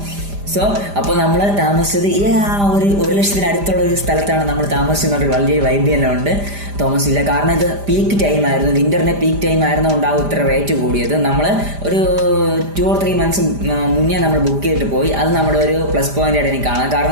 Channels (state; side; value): late; left; 5.0 ms